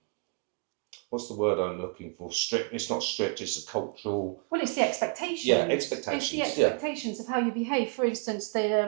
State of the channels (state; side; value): quieter; left; 35.8 dB